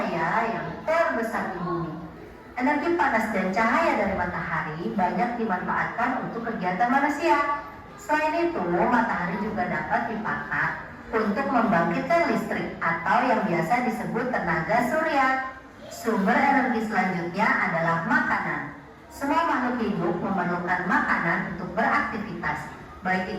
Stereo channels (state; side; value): identical; both; correlation 1.00